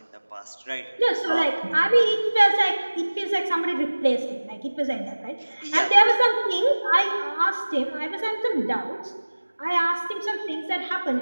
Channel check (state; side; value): inverted; both; correlation -1.00